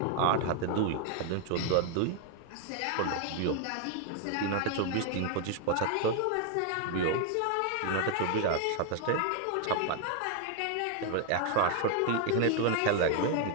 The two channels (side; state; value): both; different; correlation 0.00